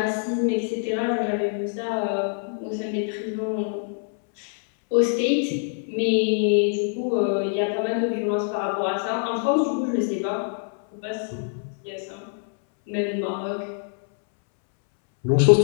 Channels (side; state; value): right; silent; 62 dB below the other